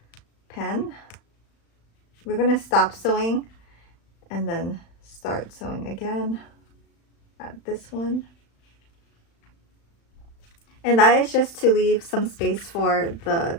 pen. We're going to stop sewing and then start sewing again at this one. And that is just to leave some space for the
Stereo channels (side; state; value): right; late; 35 ms